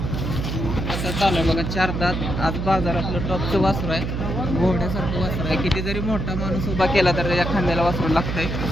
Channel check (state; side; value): noise; right; hum, 3 dB below the sound